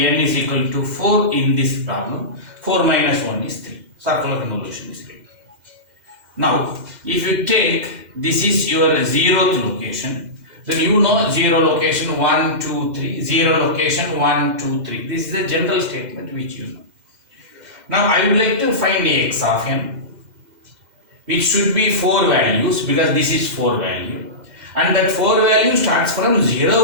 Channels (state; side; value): late; left; 2.0 ms